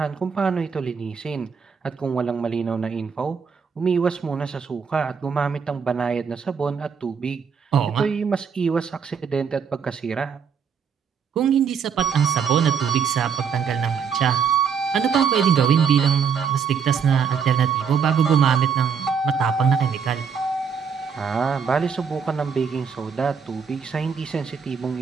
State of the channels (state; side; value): quieter; left; 6.5 dB